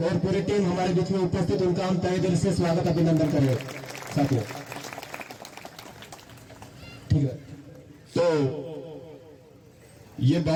और पूरी टीम हमारे बीच में उपस्थित, उनका हम तहे दिल से स्वागत अभिनंदन करें साथियों। ठीक है, तो ये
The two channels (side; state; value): both; identical; correlation 1.00